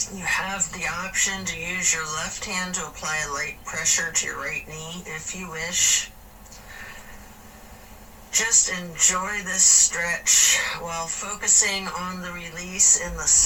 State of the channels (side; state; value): both; identical; correlation 1.00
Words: You have the option to use your left hand to apply a light pressure to your right knee if you wish. Just enjoy this stretch while focusing on the release in the